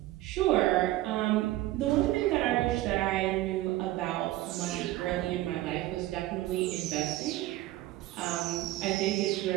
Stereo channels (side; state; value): left; quieter; 16.4 dB